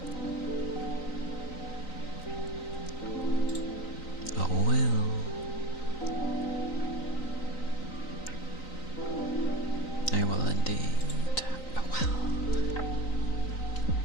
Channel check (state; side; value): late; right; 3.9 ms